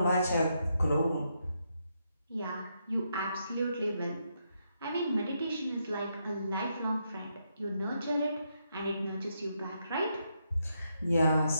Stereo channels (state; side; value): inverted; both; correlation -0.80